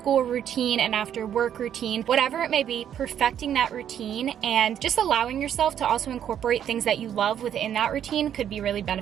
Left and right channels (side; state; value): left; quieter; 9.7 dB